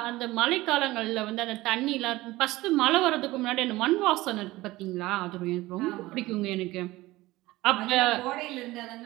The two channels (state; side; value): quieter; left; 18.7 dB